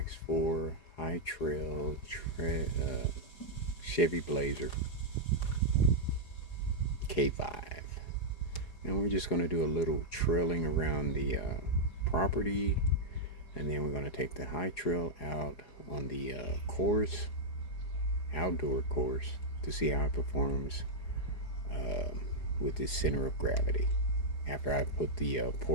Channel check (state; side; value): late; right; 4.8 ms